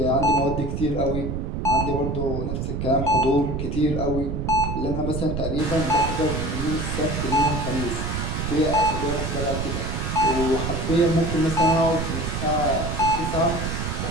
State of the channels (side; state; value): right; noise; rumble, 3 dB below the sound